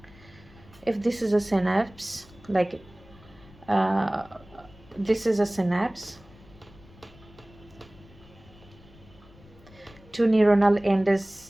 if this is a synapse, like this is a synapse, two neuronal end is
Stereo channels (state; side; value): noise; left; rumble, 24 dB below the sound